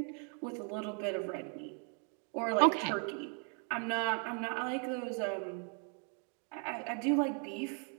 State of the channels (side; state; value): left; quieter; 39.7 dB